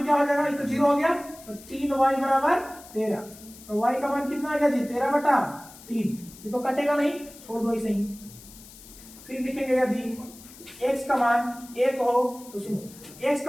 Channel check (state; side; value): noise; left; hiss, 19 dB below the sound